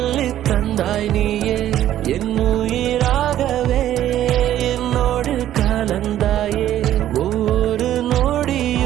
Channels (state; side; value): quieter; left; 12.3 dB